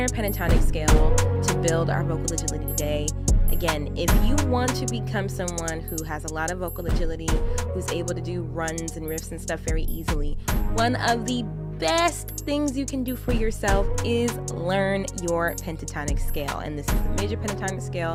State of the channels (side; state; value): both; identical; correlation 1.00